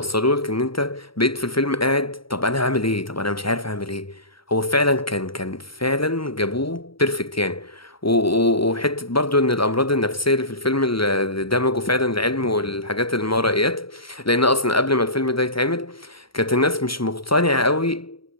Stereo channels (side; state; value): right; late; 0.74 ms